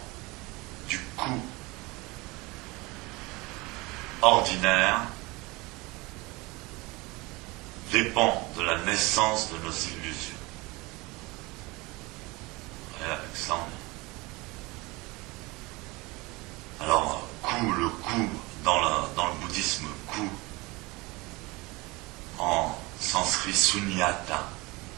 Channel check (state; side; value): quieter; left; 23.6 dB